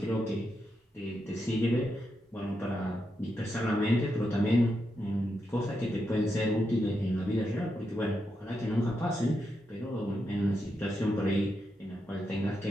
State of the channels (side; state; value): both; normal; correlation 0.84